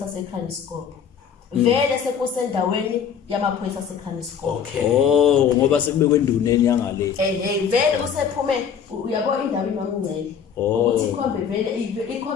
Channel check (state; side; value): quieter; right; 7.5 dB